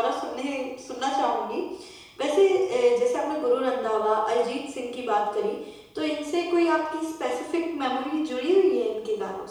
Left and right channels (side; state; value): both; identical; correlation 1.00